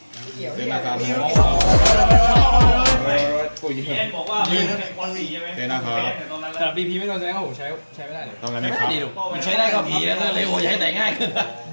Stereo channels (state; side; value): inverted; both; correlation -1.00